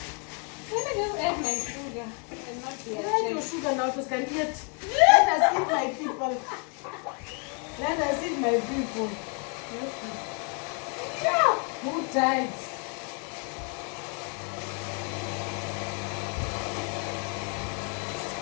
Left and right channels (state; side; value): quieter; right; 38.1 dB